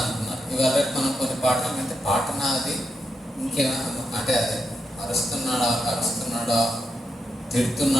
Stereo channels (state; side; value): normal; both; correlation 0.84